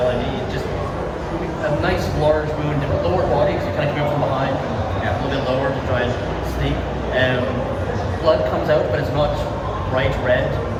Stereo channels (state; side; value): identical; both; correlation 1.00